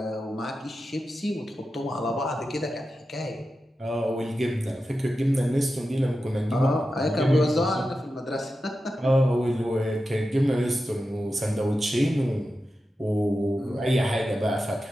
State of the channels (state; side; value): normal; both; correlation 0.91